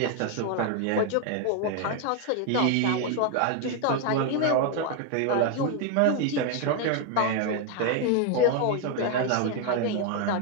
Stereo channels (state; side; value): different; both; correlation 0.01